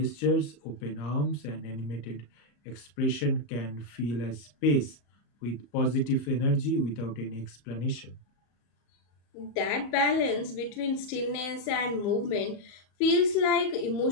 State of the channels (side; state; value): right; late; 34 ms